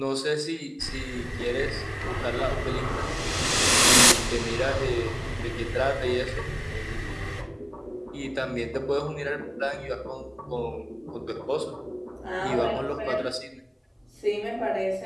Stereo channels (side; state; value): both; identical; correlation 1.00